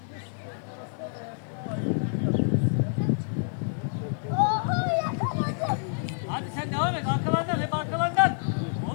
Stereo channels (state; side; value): silent; right; 59 dB below the other